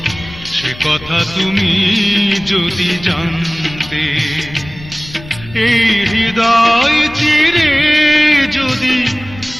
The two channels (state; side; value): noise; left; rumble, 17 dB below the sound